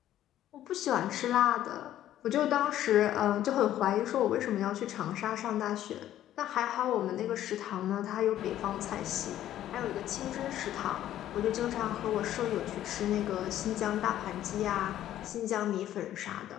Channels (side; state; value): right; quieter; 12.3 dB